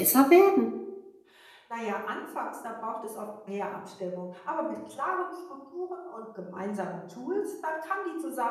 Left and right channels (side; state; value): both; identical; correlation 1.00